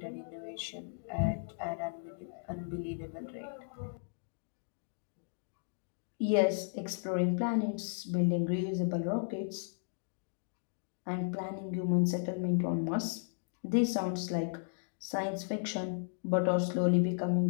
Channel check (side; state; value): right; silent; digital silence